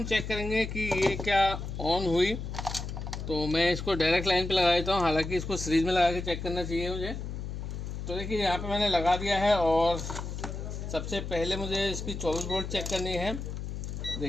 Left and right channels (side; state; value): left; noise; hum, 6 dB below the sound